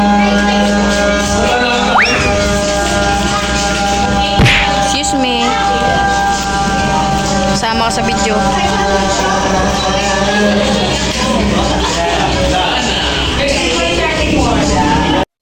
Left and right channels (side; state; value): both; identical; correlation 1.00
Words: Excuse me. Sama ka sa video. Ilan?